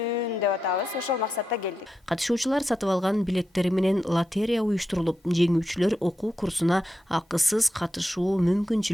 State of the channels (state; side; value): normal; both; correlation 0.87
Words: деп атабыз. Ошол максатта келдик. Катышуучулар сатып алган билеттери менен лотерея уюштурулуп, жеңүүчүлөр окуу курсуна акысыз катышуу